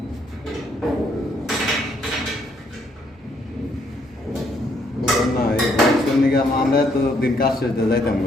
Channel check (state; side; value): normal; both; correlation 0.70